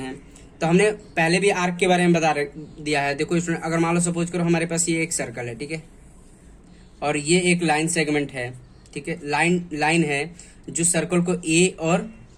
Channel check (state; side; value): identical; both; correlation 1.00